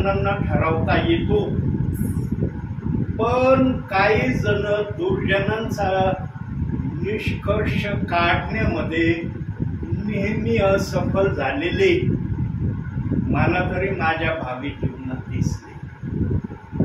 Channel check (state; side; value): identical; both; correlation 1.00